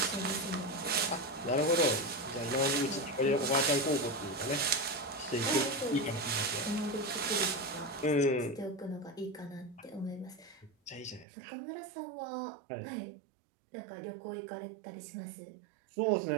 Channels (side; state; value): left; drops out; at 11.2 s